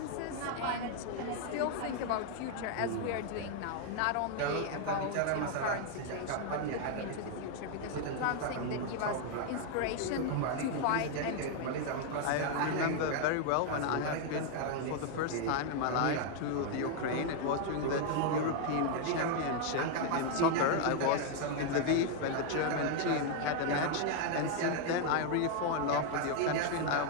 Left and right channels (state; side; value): different; both; correlation 0.00